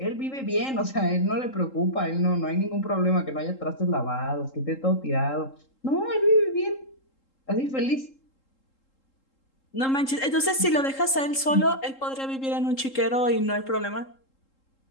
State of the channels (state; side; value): late; right; 3.8 ms